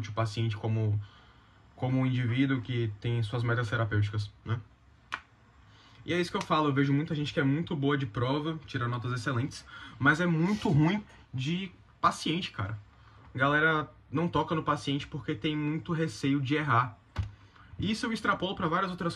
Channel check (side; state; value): both; identical; correlation 1.00